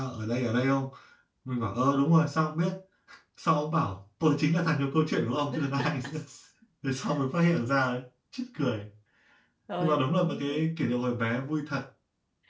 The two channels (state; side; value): identical; both; correlation 1.00